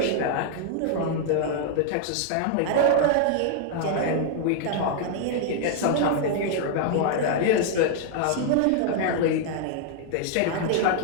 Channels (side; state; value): both; different; correlation -0.01